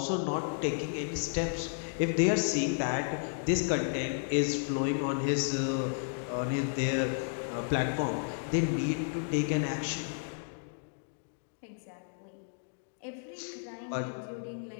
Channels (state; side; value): silent; right; digital silence